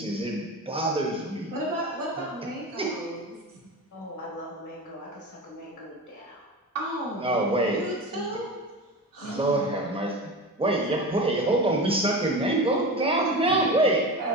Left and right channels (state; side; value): normal; both; correlation 0.27